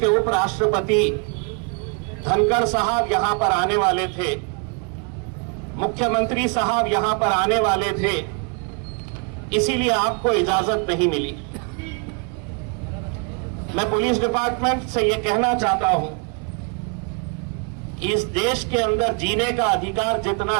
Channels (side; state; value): left; quieter; 36.5 dB